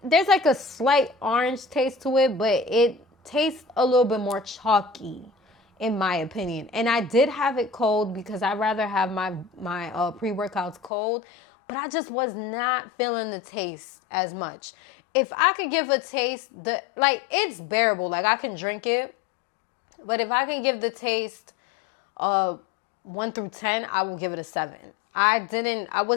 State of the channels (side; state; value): right; drops out; at 10.9 s